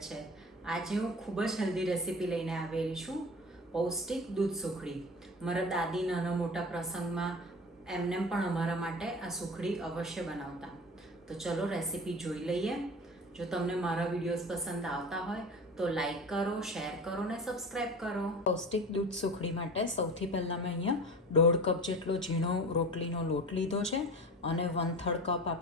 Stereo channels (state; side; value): normal; both; correlation 0.35